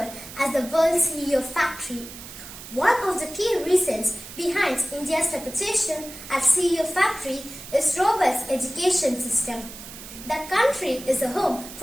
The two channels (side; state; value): right; noise; hiss, 14 dB below the sound